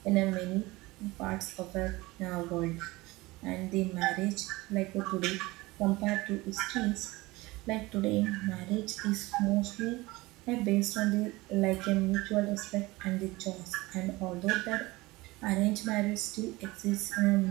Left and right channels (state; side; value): quieter; left; 21.1 dB